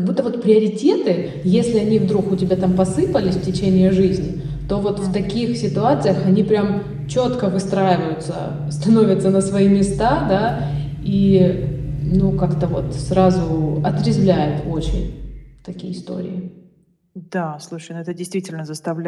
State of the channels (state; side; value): identical; both; correlation 1.00